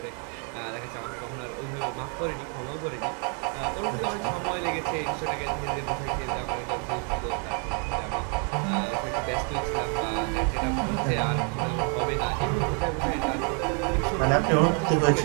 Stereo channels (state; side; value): quieter; left; 39.4 dB